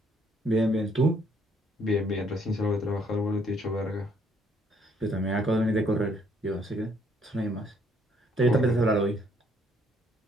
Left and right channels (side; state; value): both; normal; correlation 0.67